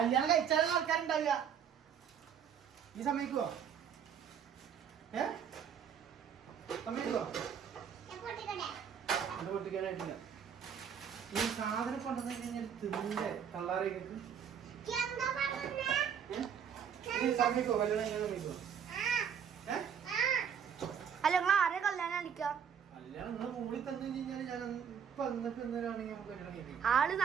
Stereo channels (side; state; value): left; quieter; 7.9 dB